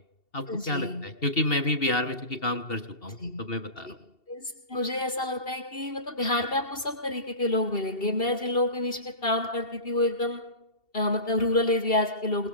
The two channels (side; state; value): right; late; 2.7 ms